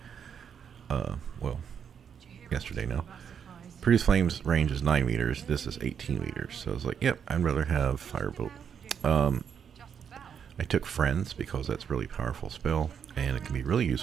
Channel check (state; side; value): quieter; left; 7.6 dB